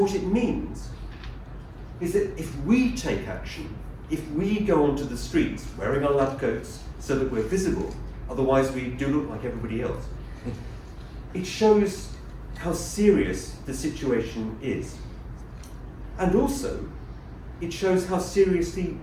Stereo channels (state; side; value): identical; both; correlation 1.00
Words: it means is that if we take action, if we go onto the streets wearing our lab coats so that we're visible, otherwise we do look like everybody else, it shows how serious the situation is. And also, it shows how seriously